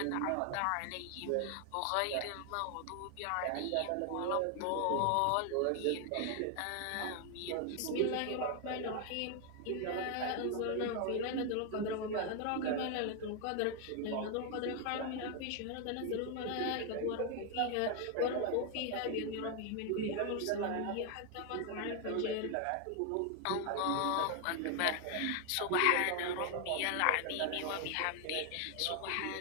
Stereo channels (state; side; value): different; both; correlation 0.00